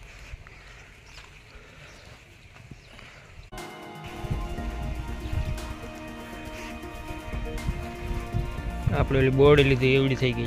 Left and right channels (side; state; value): both; identical; correlation 1.00